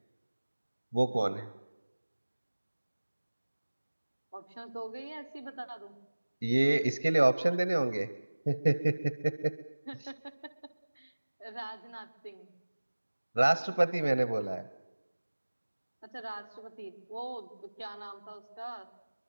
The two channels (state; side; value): inverted; both; correlation -1.00